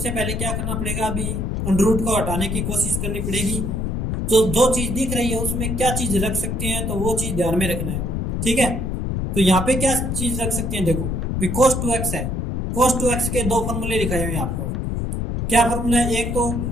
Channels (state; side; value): noise; left; rumble, 1 dB below the sound